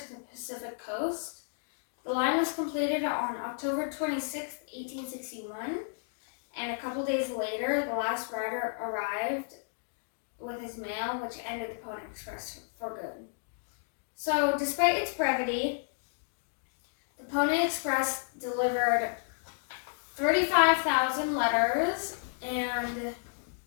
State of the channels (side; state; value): right; silent; digital silence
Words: the Pacific Coast. The line was completed on October 26, 1861, and a couple days later, the last rider arrived with his mail, which ended the Pony Express for good. So, despite its brevity, the Pony Express delivered 35,000 letters, and